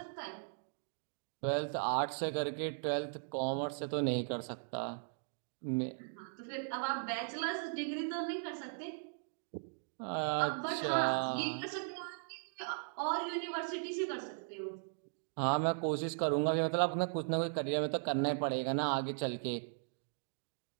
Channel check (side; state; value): left; silent; digital silence